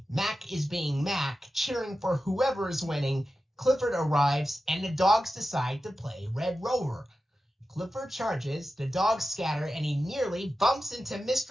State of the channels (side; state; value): both; normal; correlation 0.92